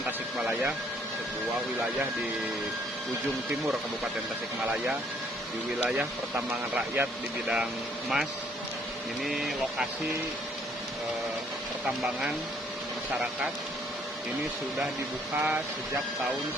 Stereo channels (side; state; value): both; normal; correlation 0.64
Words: sebuah wilayah di ujung timur Kabupaten Tasikmalaya, di wilayah pertambangan rakyat di bidang emas. Ini lokasi pertambangan masyarakat. Ini sudah dibuka sejak tahun